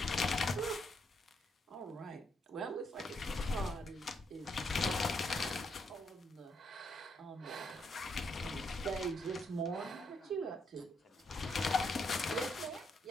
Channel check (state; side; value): normal; both; correlation 0.76